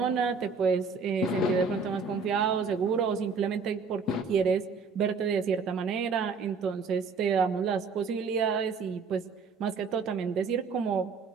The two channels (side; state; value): left; quieter; 5.0 dB